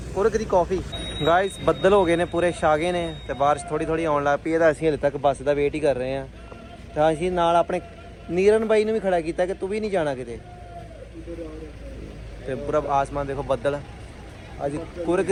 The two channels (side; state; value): both; identical; correlation 1.00